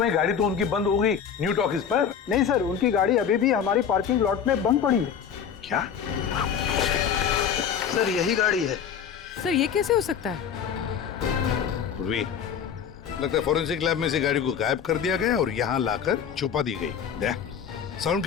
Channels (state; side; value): quieter; right; 7.8 dB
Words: है, गाड़ी तो उनकी बंद हो गई न्यू टॉकीज पर। नहीं सर, उनकी गाड़ी अभी भी हमारी पार्किंग लॉट में बंद पड़ी है। क्या? सर यही गाड़ी है। सर ये कैसे हो सकता है? लगता है फॉरेंसिक लैब में से गाड़ी को गायब कर दिया गया और यहाँ लाकर छुपा दी गई। दया,